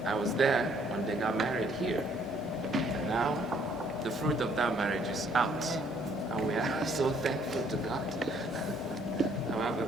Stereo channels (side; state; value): both; normal; correlation 0.64